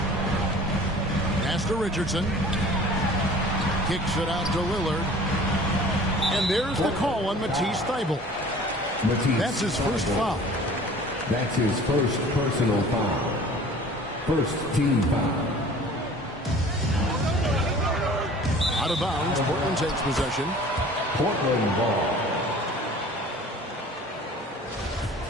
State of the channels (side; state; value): both; normal; correlation 0.46